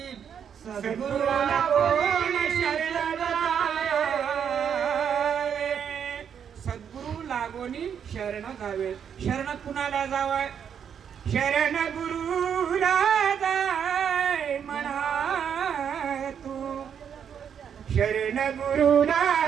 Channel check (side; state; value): left; quieter; 8.0 dB